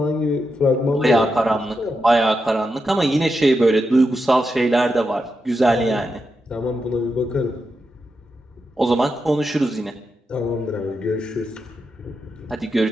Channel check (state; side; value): normal; both; correlation 0.86